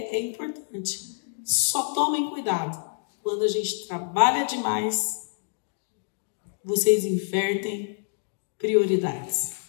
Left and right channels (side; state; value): right; silent; digital silence